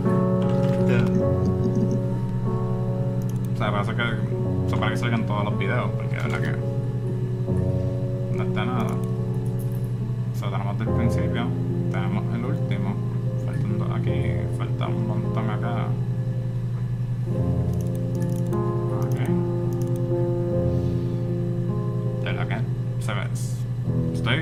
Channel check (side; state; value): both; identical; correlation 1.00